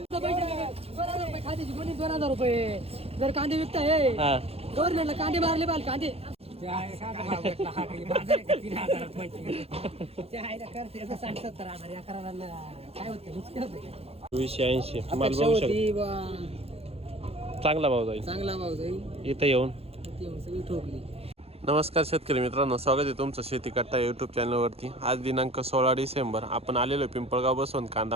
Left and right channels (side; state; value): left; late; 0.29 ms